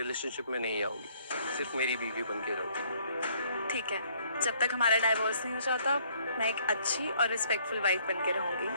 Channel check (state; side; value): inverted; both; correlation -0.63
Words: में नहीं आओगी, सिर्फ मेरी बीवी बन के रहोगी। ठीक है, जब तक हमारा डाइवोर्स नहीं हो जाता मैं एक अच्छी और रिस्पेक्टफुल वाइफ बन के रहूंगी।